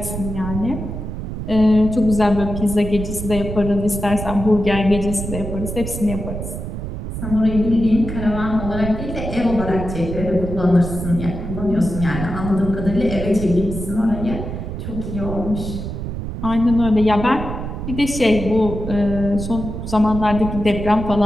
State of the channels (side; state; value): right; noise; rumble, 6 dB below the sound